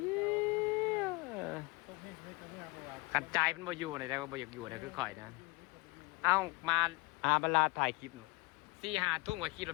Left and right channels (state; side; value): quieter; right; 24.2 dB